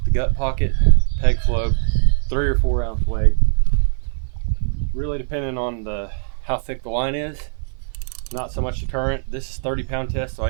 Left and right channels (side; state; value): left; silent; 56 dB below the other